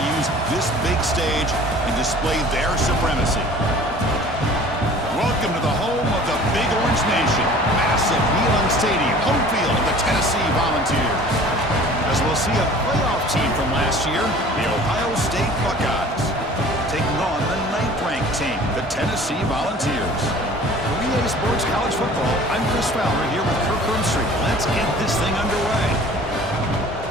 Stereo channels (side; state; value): both; normal; correlation 0.47